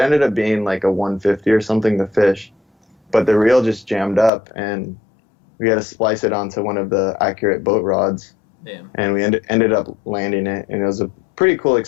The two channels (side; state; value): right; drops out; at 4.3 s